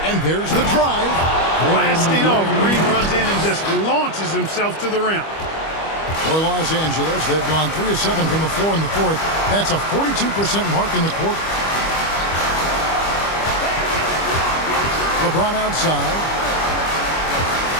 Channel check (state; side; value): late; right; 25 ms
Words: And there's the drive. Blasting off, Green runs in and just launches himself to the rim. For Los Angeles, they've gone 3 of 7 from the floor in the fourth. That's a 42% mark in the quarter. LeBron outside.